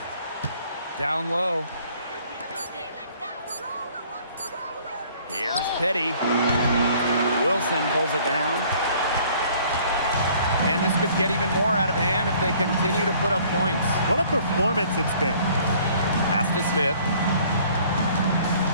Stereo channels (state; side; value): inverted; both; correlation -0.56